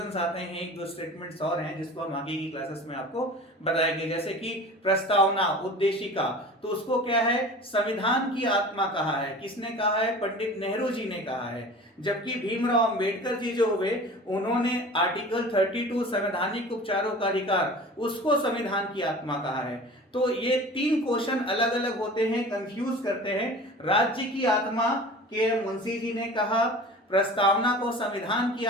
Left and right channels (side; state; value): both; normal; correlation 0.39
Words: आते हैं, एक दो स्टेटमेंट्स और हैं जिसको हम आगे की क्लासेस में आपको बताएंगे। जैसे कि प्रस्तावना, उद्देशिका, तो उसको क्या है, संविधान की आत्मा कहा है। किसने कहा है? पंडित नेहरू जी ने कहा है। जबकि भीमराव अंबेडकर जी जो हुए, उन्होंने आर्टिकल 32 संवैधानिक उपचारों का अधिकार, उसको संविधान की आत्मा कहा है। तो ये तीन क्वेश्चन अलग अलग होते हैं, कंफ्यूज करते हैं। राज्य की आत्मा के मुंशी जी ने कहा, प्रस्तावना को संविधान की